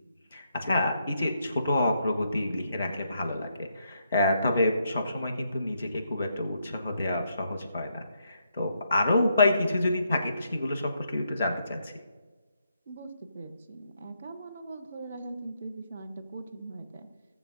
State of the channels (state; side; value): inverted; both; correlation -0.77